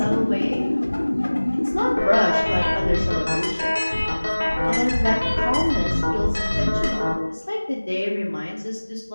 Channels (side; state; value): both; inverted; correlation -1.00